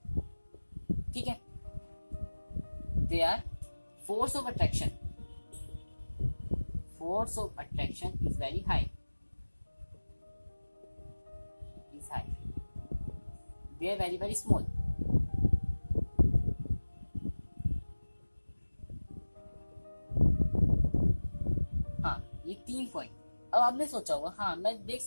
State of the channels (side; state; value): both; inverted; correlation -1.00